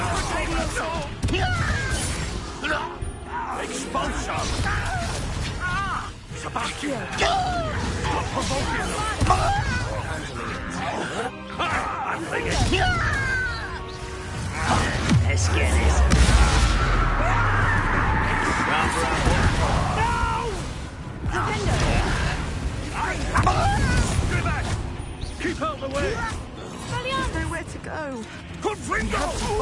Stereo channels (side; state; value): both; identical; correlation 1.00